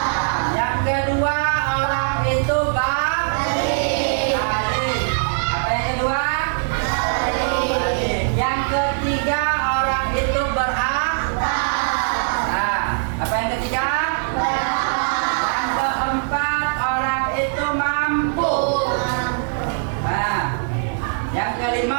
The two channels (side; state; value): left; silent; digital silence